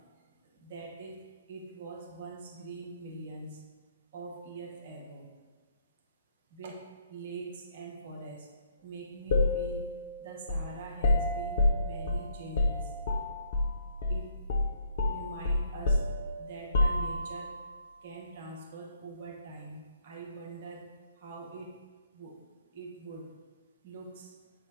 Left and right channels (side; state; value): both; inverted; correlation -0.69